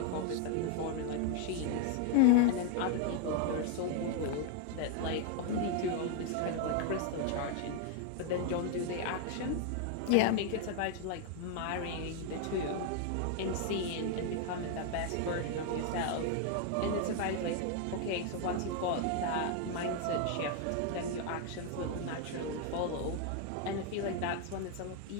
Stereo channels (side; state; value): both; different; correlation 0.00